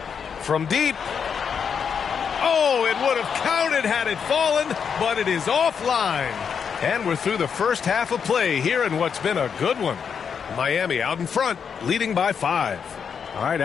From deep. Oh, it would have counted had it fallen, but it is offline. And we're through the first half of play here in what's been a good one. Miami out in front, leading by 5. All right,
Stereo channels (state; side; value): quieter; right; 6.8 dB